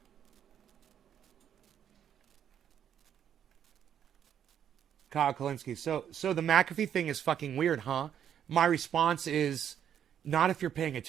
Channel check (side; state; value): left; quieter; 9.3 dB